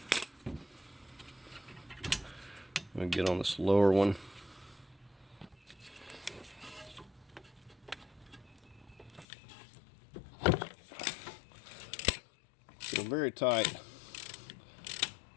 I'm going to get on this lower one. So very tight.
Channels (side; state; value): right; drops out; at 9.2 s